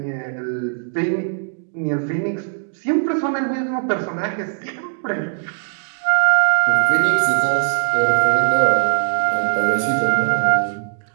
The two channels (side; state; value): left; silent; digital silence